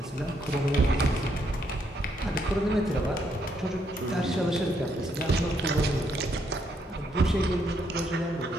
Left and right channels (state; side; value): normal; both; correlation 0.74